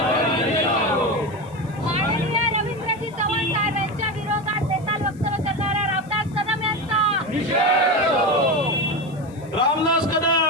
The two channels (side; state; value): left; noise; hiss, 28 dB below the sound